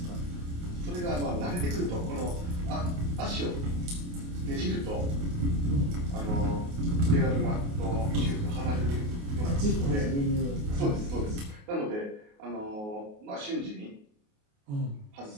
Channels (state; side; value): late; left; 28 ms